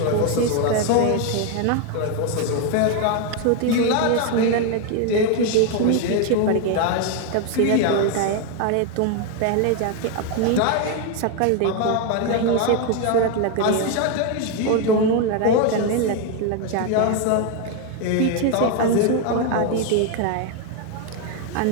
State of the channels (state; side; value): different; both; correlation 0.01